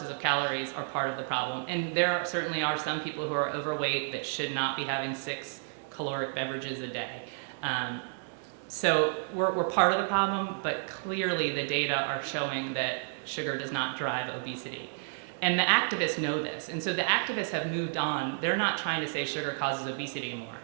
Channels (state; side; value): silent; left; digital silence